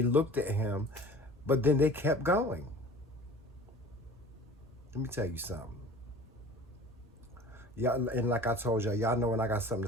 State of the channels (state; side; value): normal; both; correlation 0.43